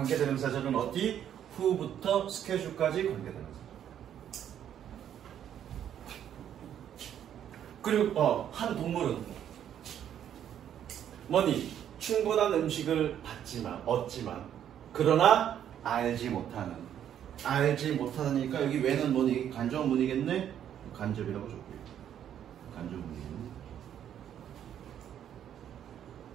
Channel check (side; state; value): left; quieter; 9.9 dB